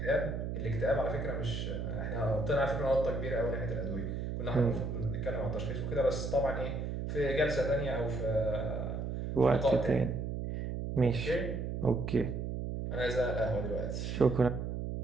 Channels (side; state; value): right; noise; hum, 3 dB below the sound